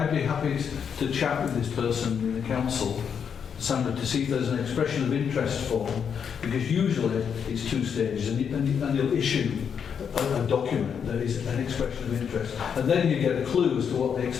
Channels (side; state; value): right; quieter; 7.3 dB